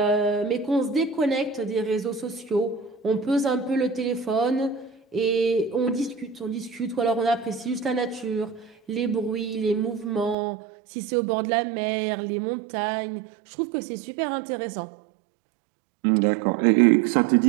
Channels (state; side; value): drops out; left; at 10.4 s